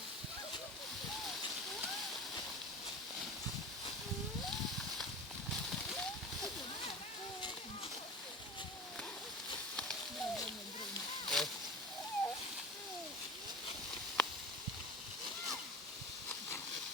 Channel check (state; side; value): normal; both; correlation 0.33